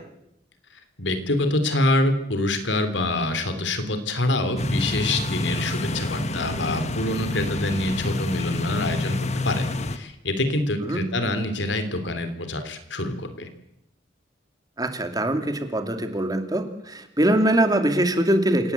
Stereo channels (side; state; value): both; normal; correlation 0.58